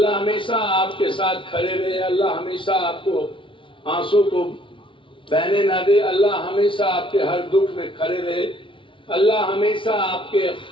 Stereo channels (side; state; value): right; late; 0.25 ms